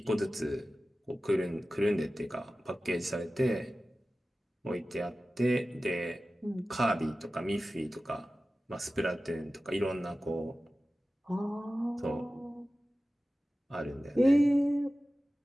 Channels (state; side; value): normal; both; correlation 0.95